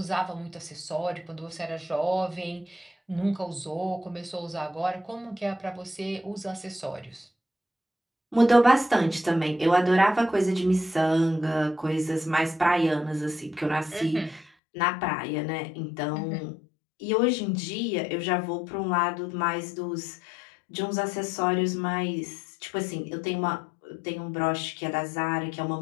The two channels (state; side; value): drops out; right; at 14.5 s